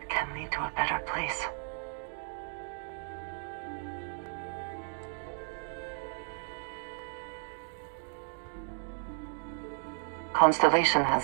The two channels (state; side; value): silent; left; 55 dB below the other